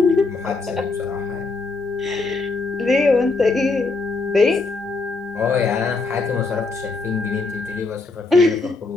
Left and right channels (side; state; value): right; quieter; 3.8 dB